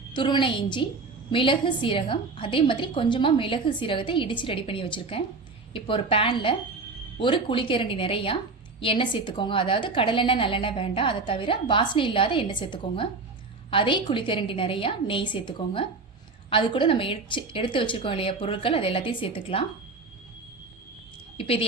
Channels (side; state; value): left; quieter; 4.0 dB